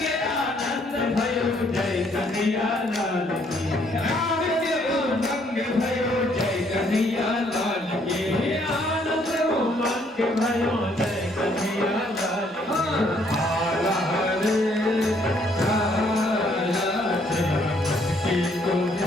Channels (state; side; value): normal; both; correlation 0.67